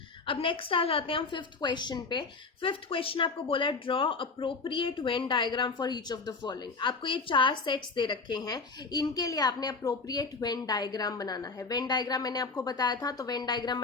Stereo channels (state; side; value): quieter; right; 4.2 dB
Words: अब नेक्स्ट आ जाते हैं हम फिफ्थ क्वेश्चन पे। फिफ्थ क्वेश्चन आपको बोला है draw appropriate Venn diagram for each of the following. आपको ये 4 सेट्स दे रखे हैं, इनके लिए आपने अप्रोप्रिएट वेन डायग्राम बनाना है। वेन डायग्राम मैंने आपको बताया था, तो वेन डायग्राम